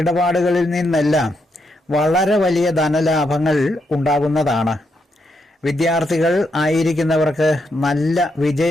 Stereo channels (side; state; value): both; normal; correlation 0.80